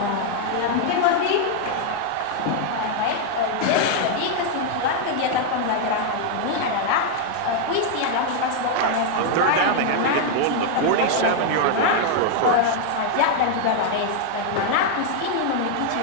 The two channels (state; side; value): different; both; correlation 0.00